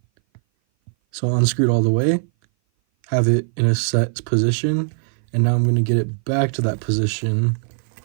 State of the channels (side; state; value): left; silent; 58 dB below the other